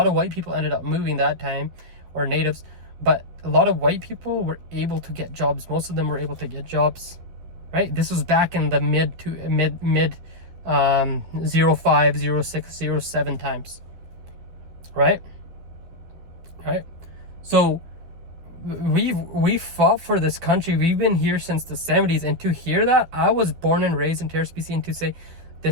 white people ended up moving that time, or natives, but a lot of white people were able to get jobs. Most of them were able to get jobs, right? This was back in the mid 05, 06, 07 times, right? So we fought for this country. We've been here since the 70s, and to hear that, I was born and raised in Terrace, BC, and to say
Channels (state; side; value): late; left; 12 ms